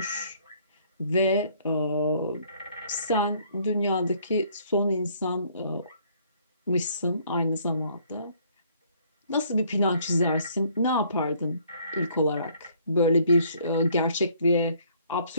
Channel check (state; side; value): inverted; both; correlation -0.63